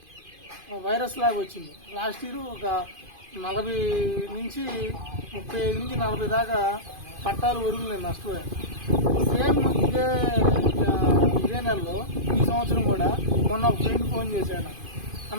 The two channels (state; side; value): late; left; 2.5 ms